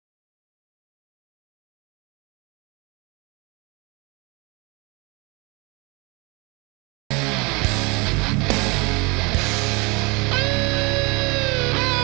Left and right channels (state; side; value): quieter; left; 27.5 dB